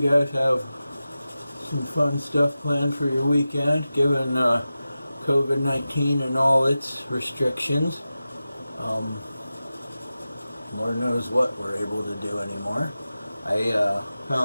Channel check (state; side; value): inverted; both; correlation -0.94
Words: have some fun stuff planned for your weekend, given COVID-19 and all its restrictions. Lord knows what we're able to do anymore. I